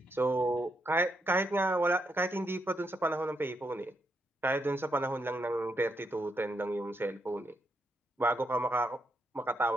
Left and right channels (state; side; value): normal; both; correlation 0.79